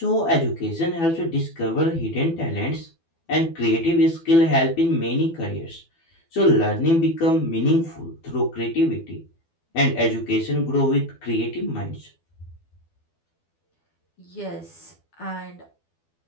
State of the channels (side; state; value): right; late; 12 ms